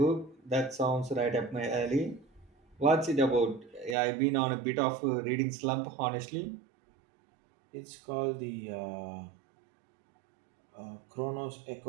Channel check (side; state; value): left; drops out; at 4.0 s